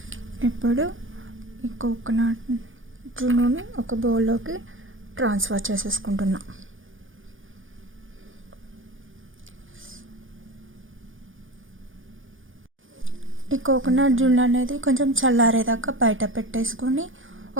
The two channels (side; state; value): left; late; 0.58 ms